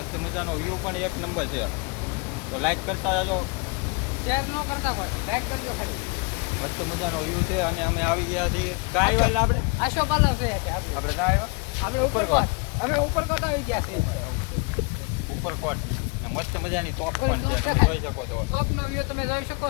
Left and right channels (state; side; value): quieter; right; 30.5 dB